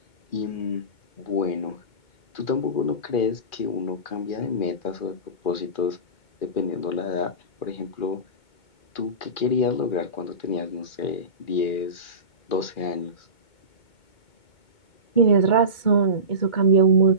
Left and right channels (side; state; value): right; late; 2.2 ms